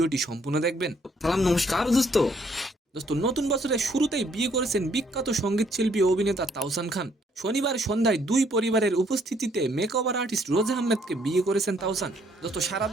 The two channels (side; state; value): both; normal; correlation 0.67